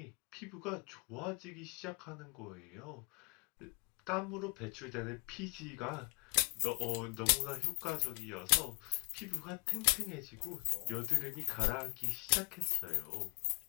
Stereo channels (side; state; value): right; quieter; 30.7 dB